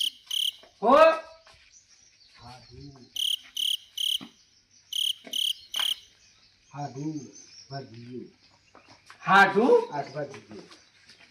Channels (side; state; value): both; identical; correlation 1.00